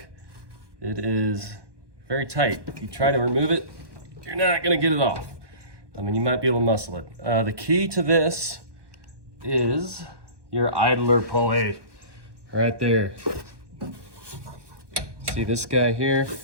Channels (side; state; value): left; late; 1.1 ms